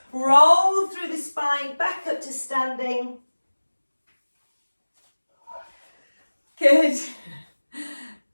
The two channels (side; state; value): both; inverted; correlation -1.00